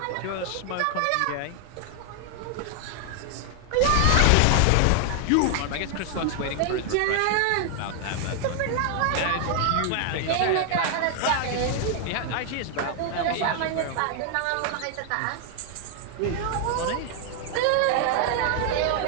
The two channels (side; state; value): both; different; correlation 0.00